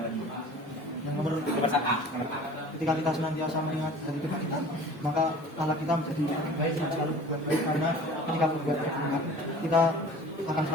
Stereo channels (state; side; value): normal; both; correlation 0.44